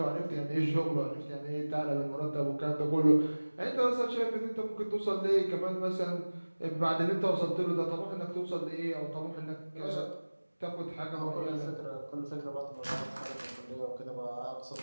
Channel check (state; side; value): inverted; both; correlation -1.00